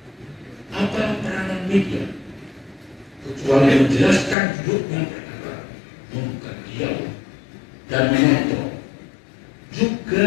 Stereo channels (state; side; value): drops out; right; at 4.4 s